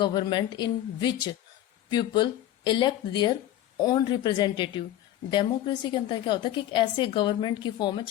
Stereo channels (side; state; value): right; quieter; 12.9 dB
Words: in which people elect their own representative. Democracy के अंदर क्या होता है कि एक ऐसे government की form है